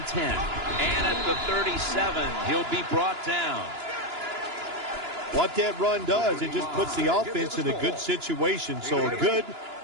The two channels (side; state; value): left; late; 2.9 ms